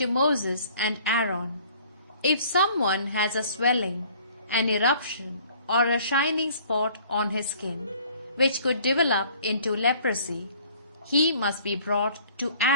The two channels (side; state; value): both; inverted; correlation -0.54